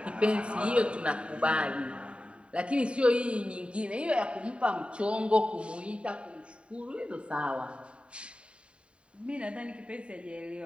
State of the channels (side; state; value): left; late; 0.057 ms